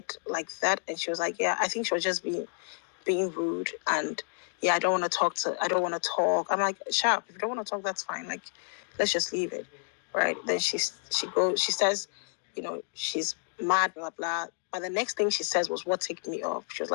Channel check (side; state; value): right; silent; digital silence